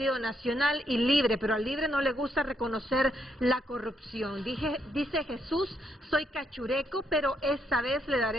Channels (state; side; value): normal; both; correlation 0.75